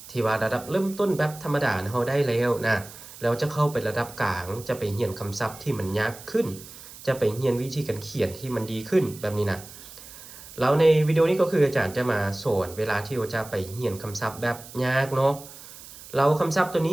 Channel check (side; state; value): right; noise; hiss, 17 dB below the sound